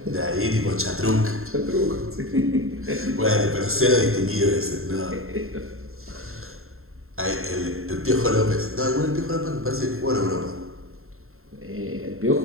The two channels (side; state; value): left; late; 0.62 ms